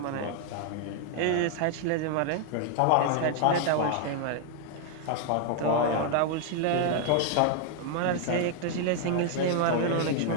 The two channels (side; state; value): both; different; correlation 0.00